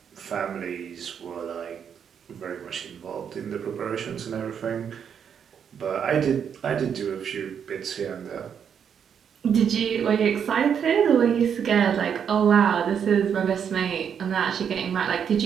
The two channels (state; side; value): quieter; left; 7.8 dB